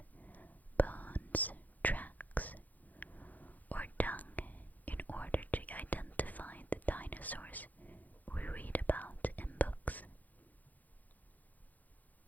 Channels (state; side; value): late; right; 0.081 ms